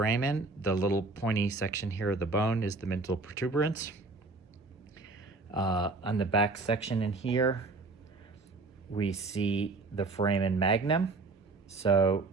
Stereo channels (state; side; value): quieter; left; 3.6 dB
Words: The little pointy section here of the bone is the mental protuberance. On the back section in here, we see the foramen magnum. So